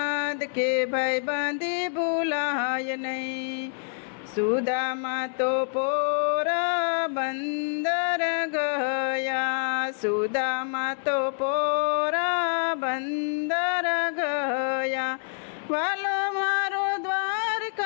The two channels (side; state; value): right; silent; digital silence